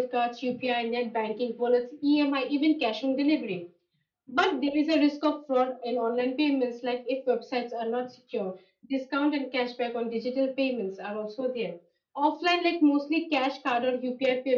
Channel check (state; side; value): identical; both; correlation 1.00